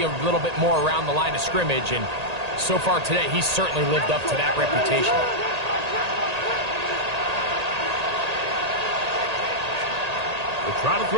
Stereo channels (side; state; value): left; late; 1.8 ms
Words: a little bit more around the line of scrimmage, and so far today, he's certainly lived up to that reputation. They'll try to